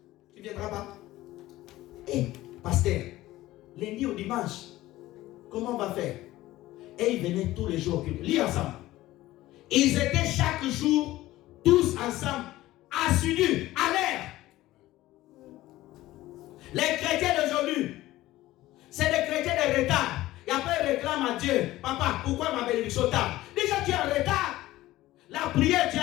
tu ne viendras pas. Pasteur, lundi au dimanche, comment on va faire? Et ils venaient tous les jours au culte. Lis ensemble. Ils étaient chaque jour, tous ensemble, assidus, à l'air. Les chrétiens d'aujourd'hui, c'est des chrétiens de retard. Et après, ils réclament à Dieu. Papa, pourquoi ma bénédiction tarde? Déjà, tu es en retard. La prière, tu es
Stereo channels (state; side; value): quieter; right; 16.5 dB